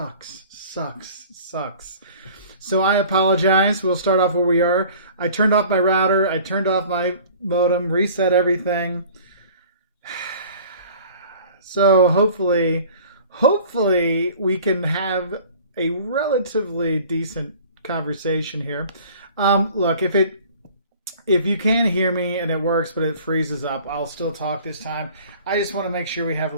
So I apologize. We'll start off where we are. I turned off my router. I turned off my modem, reset everything. So hopefully we can have a relatively decent conversation here. Look, if you can hear me and it works, but it freezes up, I'll still talk this time. I just want to make sure we have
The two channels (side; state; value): both; inverted; correlation -0.47